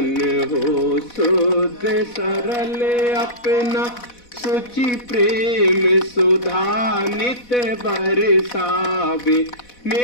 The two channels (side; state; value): right; late; 4.1 ms